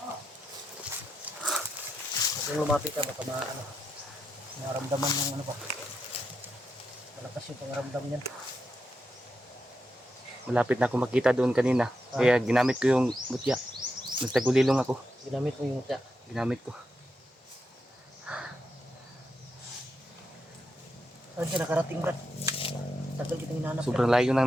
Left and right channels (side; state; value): both; normal; correlation 0.85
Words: Kung lumapit ka baka naramdaman ng ano pa. Malakas yung pangaramdam niyan. Malapit na ako makita doon kanina. Kaya ginamit ko yung mutya. Nagtagulilong ako. Ginamit mo yung mutya. Ginamit ko. Saan ka nakarating, Brad? Tagal kitang hinanap. Sobrang layo